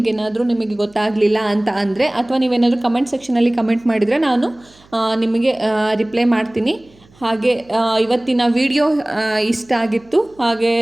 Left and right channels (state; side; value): noise; right; hum, 29 dB below the sound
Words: ಗೊತ್ತಾಗಲಿಲ್ಲ ಅಂತ ಅಂದರೆ, ಅಥವಾ ನೀವೇನಾದರೂ ಕಮೆಂಟ್ ಸೆಕ್ಷನಲ್ಲಿ ಕಮೆಂಟ್ ಮಾಡಿದರೆ ನಾನು ನಿಮಗೆ ರಿಪ್ಲೈ ಮಾಡ್ತೀನಿ. ಹಾಗೆ ಇವತ್ತಿನ ವಿಡಿಯೋ ಇಷ್ಟ ಆಗಿತ್ತು. ಹಾಗೆ